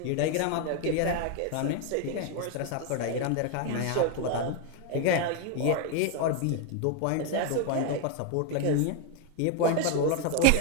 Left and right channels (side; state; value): both; different; correlation 0.01